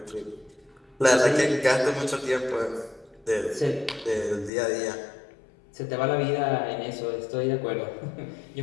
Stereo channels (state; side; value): drops out; right; at 4.5 s